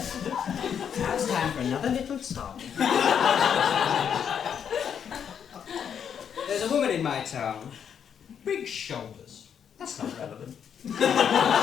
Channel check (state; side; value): quieter; right; 8.0 dB